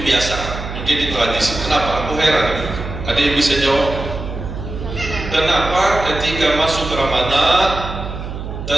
kebiasaan, menjadi tradisi? Kenapa? Aku heran. Ada yang bisa jawab? Kenapa ketika masuk Ramadan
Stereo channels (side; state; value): right; noise; hum, 8 dB below the sound